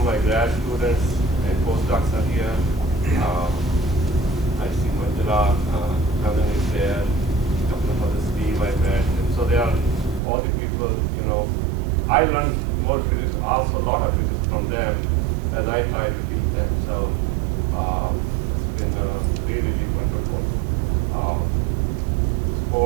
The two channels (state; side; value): drops out; left; at 10.2 s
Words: my grad students and postdocs are here. I see Bajura, Harner is there, a couple of others, Steve I met, and so they are all the people, you know, I learned more physics, also a lot of physics from them as I try to teach them. So it's been really, really wonderful.